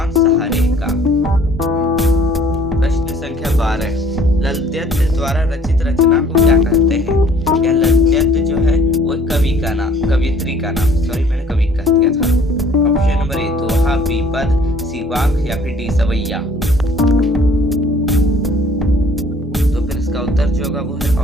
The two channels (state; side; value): normal; both; correlation 0.56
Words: कवियत्री का नाम, सॉरी मैंने कवि कह दिया था। ऑप्शन नंबर ए दोहा, बीपद, सी वाक या फिर डी सवैया। तो फिर इसका उत्तर जो होगा वो है